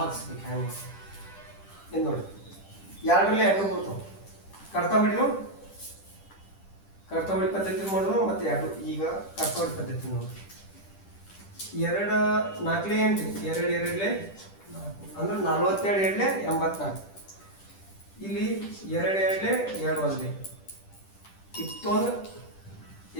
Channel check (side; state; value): right; late; 10 ms